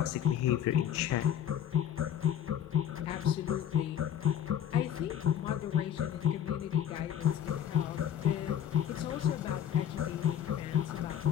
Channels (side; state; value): right; quieter; 9.8 dB